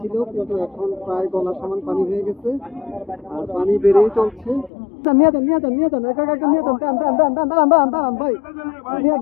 কিন্তু এখন প্রায় গলা সমান পানি হয়ে গেছে আর পানি বেড়েই চলছে। নিয়ে যান নিয়ে যান নিয়ে যান, একা একা নিয়ে যান, দাঁড়ান ভাই, নিয়ে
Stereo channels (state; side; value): drops out; right; at 4.7 s